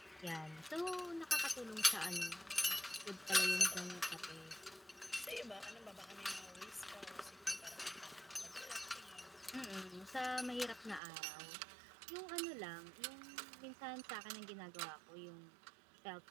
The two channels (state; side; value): drops out; left; at 11.0 s